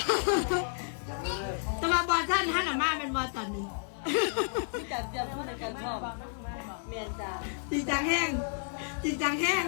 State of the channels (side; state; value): right; silent; 57 dB below the other